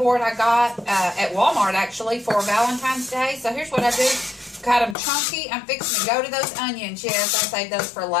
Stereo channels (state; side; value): drops out; right; at 5.0 s